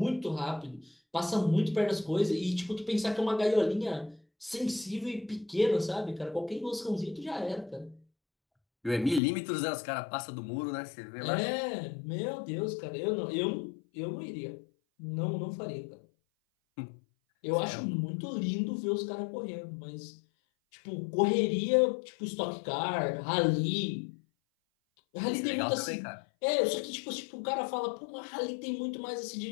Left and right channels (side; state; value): right; drops out; at 9.2 s